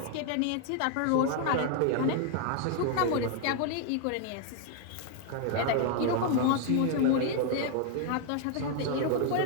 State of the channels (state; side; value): different; both; correlation 0.00